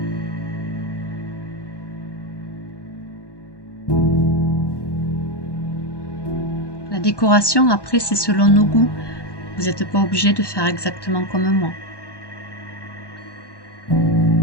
La décoration, après, c'est selon nos goûts. Vous n'êtes pas obligé de faire exactement comme moi.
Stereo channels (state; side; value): late; right; 1.1 ms